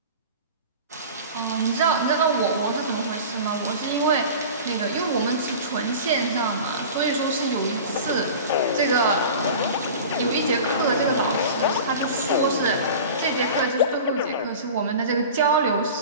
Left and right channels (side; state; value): both; inverted; correlation -0.36